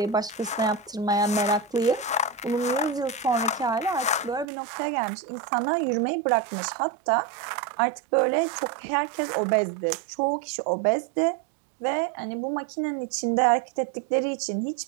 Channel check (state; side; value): drops out; left; at 4.5 s